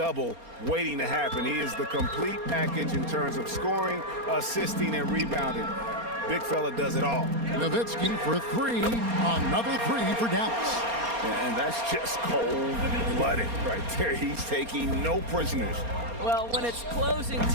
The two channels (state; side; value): late; left; 4.3 ms